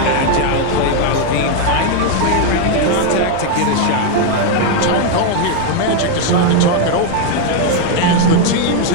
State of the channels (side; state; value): both; different; correlation 0.01